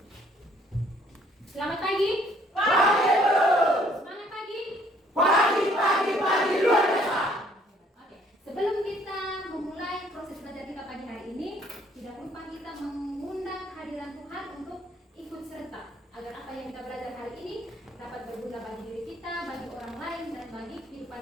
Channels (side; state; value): both; normal; correlation 0.62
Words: Selamat pagi. Pagi, guru. Semangat pagi. Pagi luar biasa. Oke. Sebelum kita memulai proses belajar kita pagi hari ini, tidak lupa kita mengundang hadiran Tuhan untuk ikut serta agar apa yang kita belajar hari ini dapat berguna bagi diri kita, bagi orang lain, dan bagi